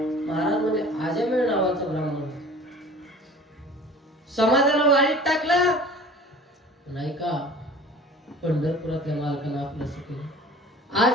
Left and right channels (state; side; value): normal; both; correlation 0.45